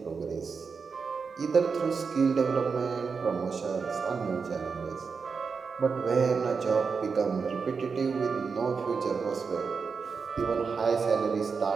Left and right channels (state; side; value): quieter; left; 5.3 dB